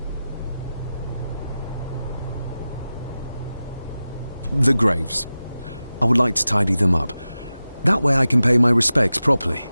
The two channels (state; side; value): inverted; both; correlation -0.94